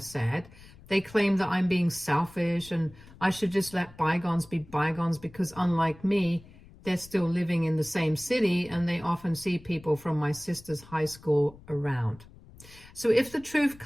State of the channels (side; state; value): left; noise; rumble, 22 dB below the sound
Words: They claim that I'm being selfish and I should just let bygones be bygones because, unlike me, they're still living in the same city and they often see people from my sister's high school around. So if the truth